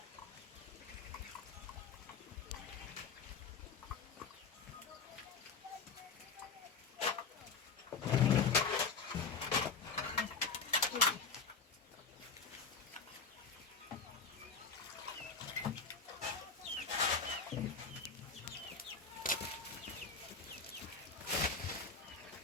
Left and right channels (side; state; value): right; quieter; 4.9 dB